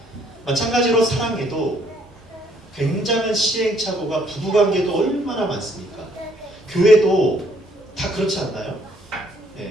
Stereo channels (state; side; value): normal; both; correlation 0.66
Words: 마찬가지로 사랑에도 굉장한 시행착오가 부부관계도 얼마나 많습니까? 교회도 다 그렇지 않나요?